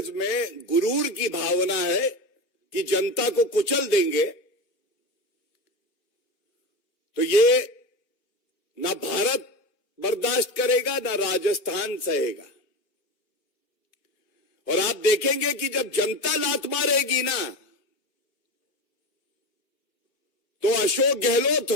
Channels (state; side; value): late; right; 2.8 ms